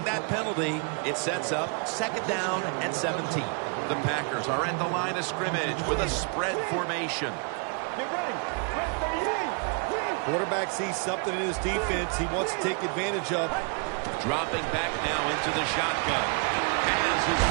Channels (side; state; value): left; quieter; 37.0 dB